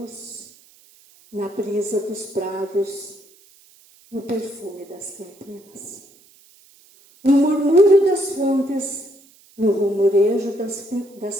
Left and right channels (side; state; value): right; noise; hiss, 28 dB below the sound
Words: na brisa dos prados, no perfume das campinas, no murmúrio das fontes, no rumorejo das